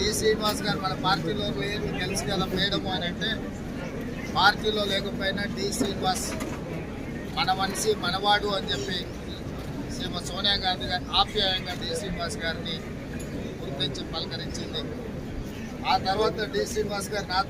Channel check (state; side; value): identical; both; correlation 1.00